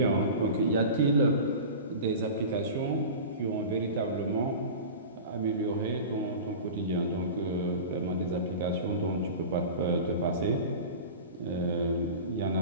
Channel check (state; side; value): inverted; both; correlation -0.33